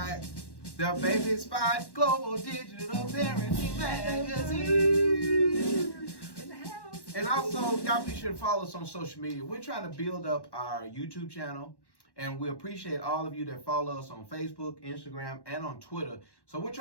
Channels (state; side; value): late; right; 1.1 ms